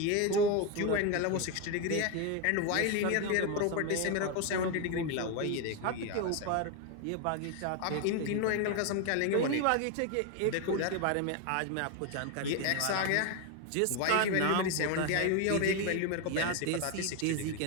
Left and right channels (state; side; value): different; both; correlation 0.02